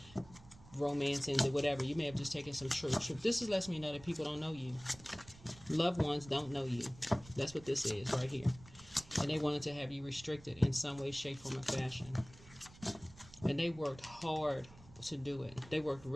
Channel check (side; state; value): right; noise; rumble, 21 dB below the sound